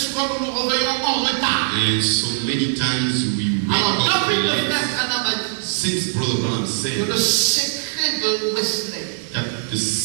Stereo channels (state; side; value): silent; left; digital silence